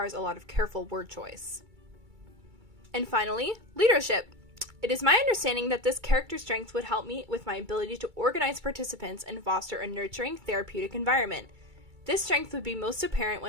a lot of careful word choice. And finally, leadership. It is my understanding that this character strength would help me with my ability to organize participants and foster a nurturing, therapeutic environment. This strength would be most apparent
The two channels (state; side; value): late; left; 2.3 ms